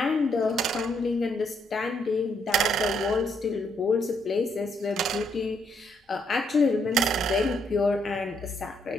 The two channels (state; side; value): normal; both; correlation 0.73